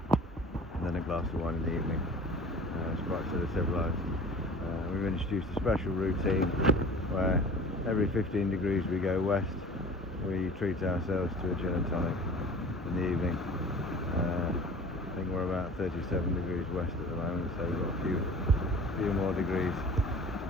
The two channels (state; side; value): normal; both; correlation 0.42